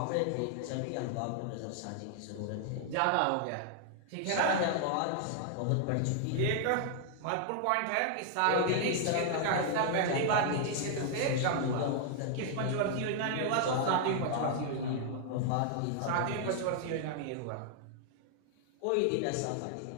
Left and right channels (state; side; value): different; both; correlation 0.00